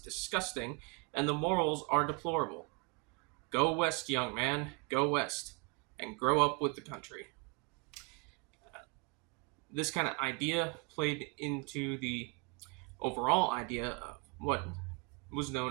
and the morals are deplorable. Go west, young man, go west, and grow up with the country. This kind of idea played into the overall idea of what was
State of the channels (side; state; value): left; quieter; 32.1 dB